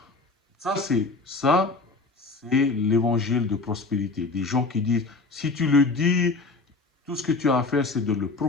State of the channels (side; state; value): right; quieter; 3.7 dB